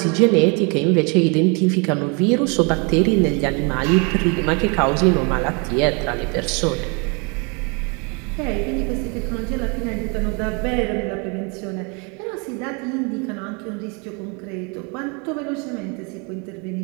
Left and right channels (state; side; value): quieter; left; 32.8 dB